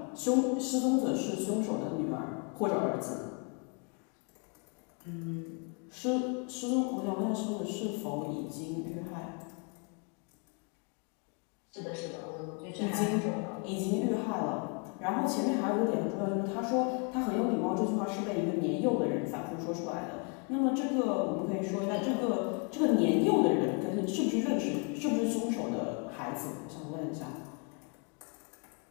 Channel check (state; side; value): quieter; right; 35.5 dB